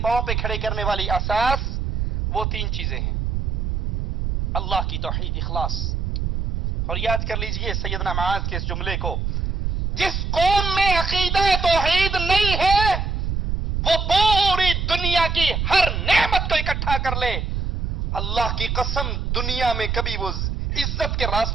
پہ کھڑے کرنے والی اساس وہ 3 چیزیں ہیں. اللہ کی توحید، اخلاص. اور یاد کر لیجئے سیدنا معاذ کے اس جملے کو، جس قوم میں عقیدہ توحید نہیں ہے وہ پوری دنیا کی ہر نعمت کو اکٹھا کر لے، اللہ کی قسم دنیا میں کبھی وہ عزت کے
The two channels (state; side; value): noise; right; rumble, 1 dB below the sound